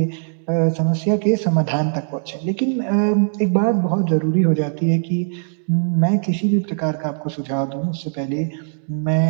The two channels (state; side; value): silent; left; 66 dB below the other